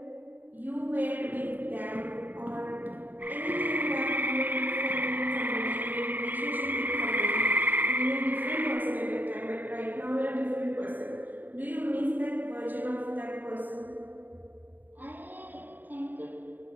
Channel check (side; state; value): left; late; 0.088 ms